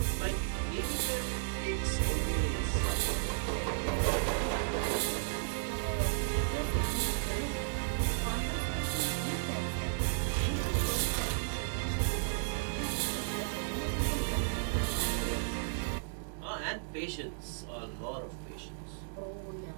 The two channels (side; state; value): left; silent; digital silence